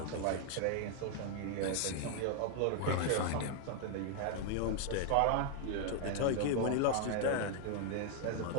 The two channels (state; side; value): different; both; correlation 0.00